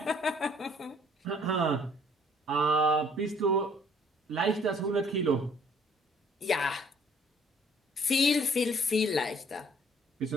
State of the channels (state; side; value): normal; both; correlation 0.60